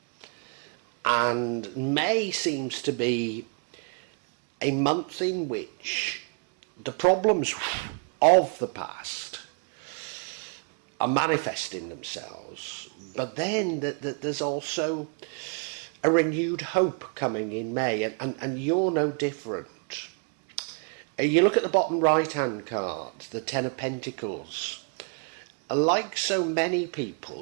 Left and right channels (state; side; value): quieter; left; 39.2 dB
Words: And May seems to be a month in which the problems of the past are manifesting themselves, but then there's also a renewed hope coming in May, and you're no different. You look at the bottom right hand card, the Ten of Pentacles. Like so many